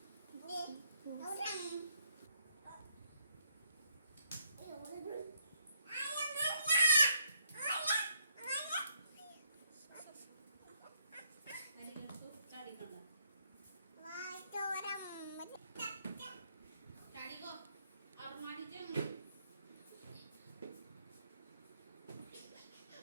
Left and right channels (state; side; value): inverted; both; correlation -0.73